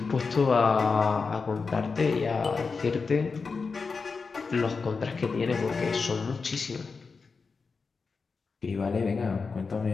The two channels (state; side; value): quieter; right; 4.7 dB